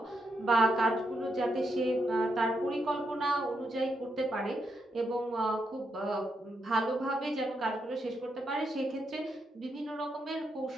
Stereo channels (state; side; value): normal; both; correlation 0.81